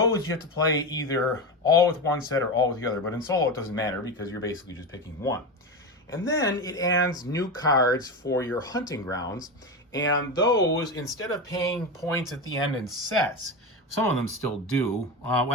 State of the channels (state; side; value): normal; both; correlation 0.19